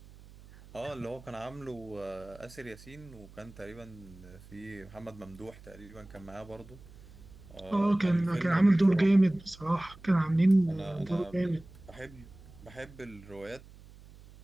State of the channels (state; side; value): noise; right; hum, 20 dB below the sound